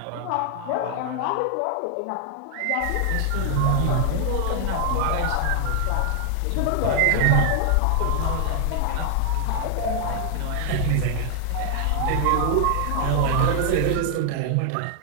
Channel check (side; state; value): both; different; correlation 0.00